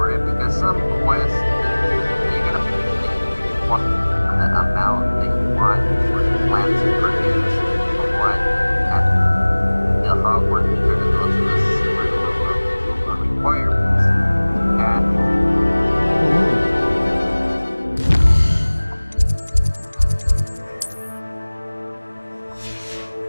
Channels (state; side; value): inverted; both; correlation -1.00